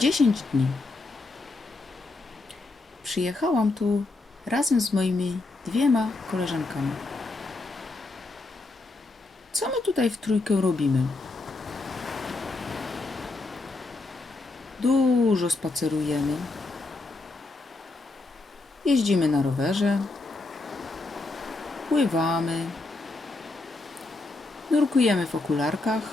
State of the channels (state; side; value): quieter; right; 3.3 dB